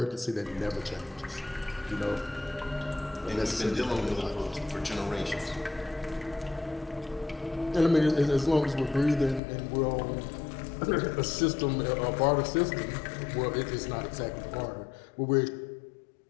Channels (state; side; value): drops out; right; at 9.4 s